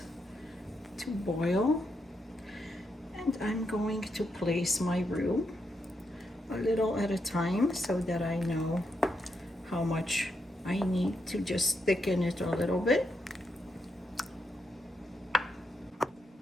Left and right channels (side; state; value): both; normal; correlation 0.82